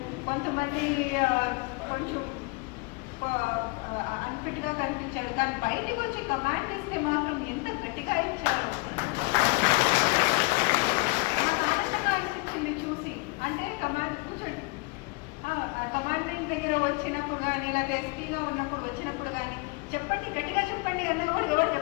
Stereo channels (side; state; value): right; quieter; 26.8 dB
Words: కొంతమంది కొంచెం అన్ఫిట్గా కనిపించారు. కానీ బయటకు వచ్చి కమాండ్ ఇస్తే మాత్రం ఎంత గట్టిగా ఇచ్చారు. ఆనందంగా అనిపించింది చూసి. అంటే కమాండ్ కూర్చోండి, కమాండెంట్ దగ్గర వచ్చినప్పుడు కానీ లేదా ఎస్పీగా ఉన్నప్పుడు వచ్చినప్పుడు కానీ చెప్పండి, గట్టిగా చెప్పండి అన్నా కూడా ఎవరు